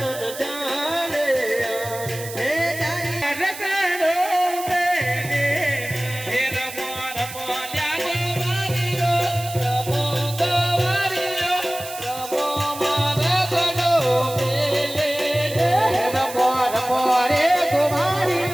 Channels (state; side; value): noise; right; hiss, 12 dB below the sound